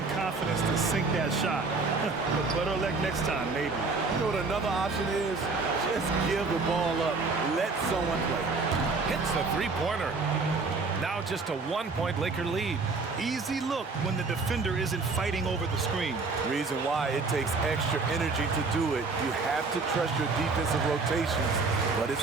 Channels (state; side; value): quieter; left; 4.1 dB